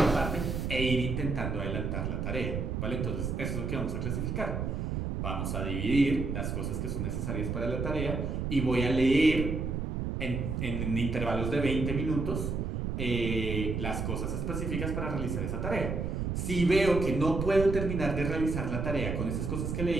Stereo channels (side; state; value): right; noise; rumble, 2 dB below the sound